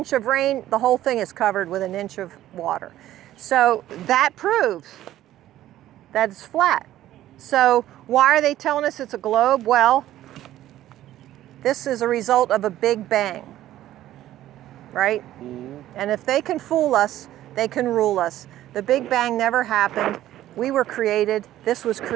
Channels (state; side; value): quieter; left; 13.5 dB